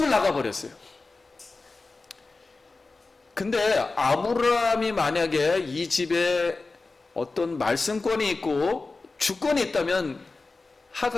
나가버렸어요. 근데 아브라함이 만약에 이 집에 어떤 말씀권이 있고 주권이 있다면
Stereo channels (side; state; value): right; quieter; 3.7 dB